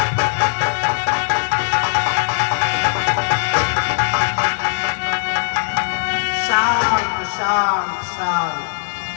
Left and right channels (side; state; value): right; silent; digital silence